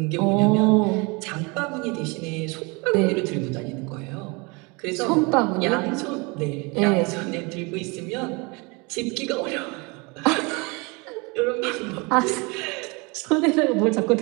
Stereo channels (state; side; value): quieter; left; 28.3 dB